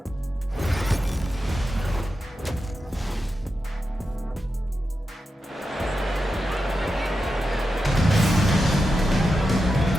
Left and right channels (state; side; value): normal; both; correlation 0.89